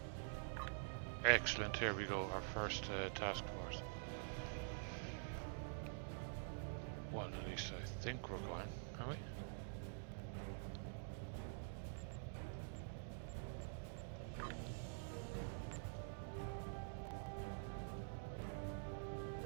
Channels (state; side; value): silent; left; digital silence